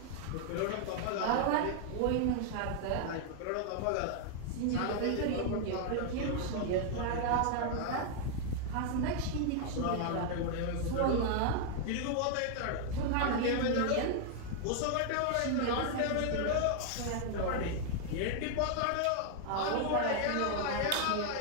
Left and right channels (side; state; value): both; different; correlation 0.00